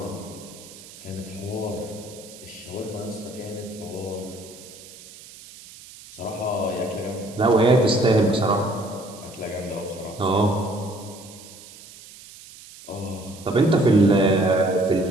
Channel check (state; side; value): noise; right; hiss, 19 dB below the sound